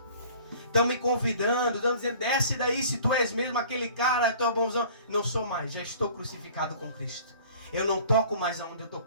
Estão me convidando, estão dizendo, desce daí se tu és mesmo aquele cara, tu é bonzão. Não sou mais, já estou crucificado com Cristo. Eu não toco mais aonde eu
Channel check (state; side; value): inverted; both; correlation -0.48